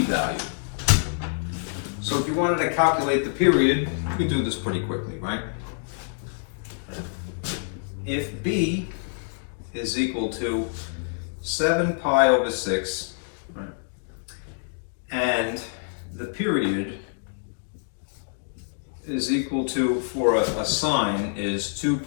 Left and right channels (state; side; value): silent; right; digital silence